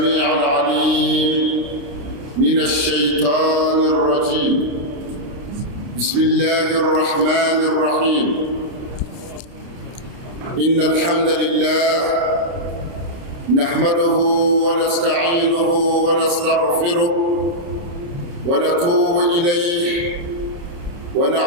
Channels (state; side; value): late; left; 29 ms